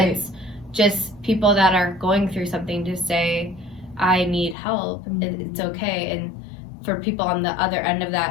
just people that are going through something to say, I need help, it's okay. And for people on the other end of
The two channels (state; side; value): drops out; right; at 4.5 s